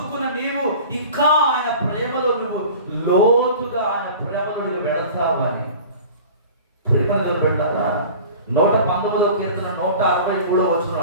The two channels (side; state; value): both; inverted; correlation -0.40